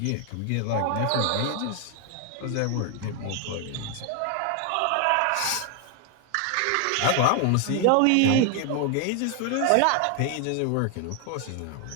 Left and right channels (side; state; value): both; different; correlation 0.01